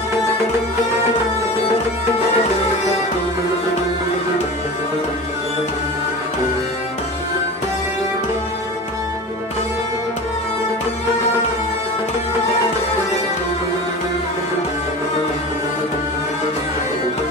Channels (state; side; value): normal; both; correlation 0.32